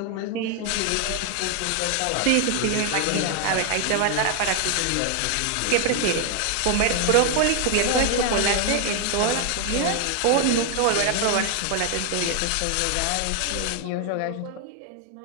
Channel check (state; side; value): different; both; correlation 0.01